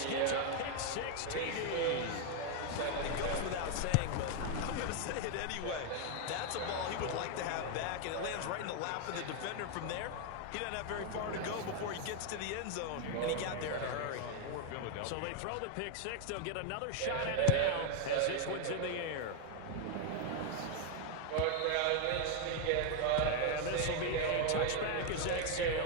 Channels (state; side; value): different; both; correlation 0.01